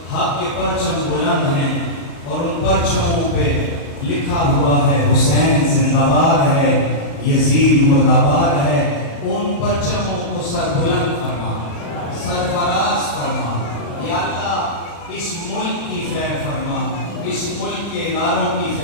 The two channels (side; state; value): right; late; 35 ms